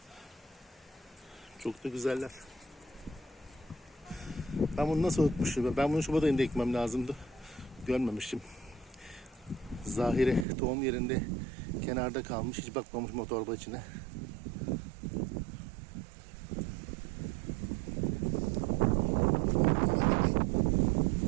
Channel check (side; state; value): left; drops out; at 10.5 s